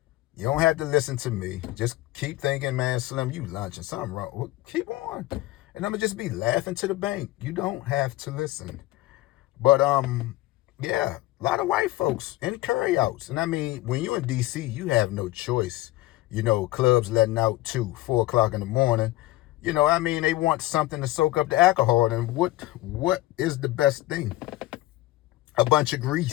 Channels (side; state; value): right; quieter; 17.7 dB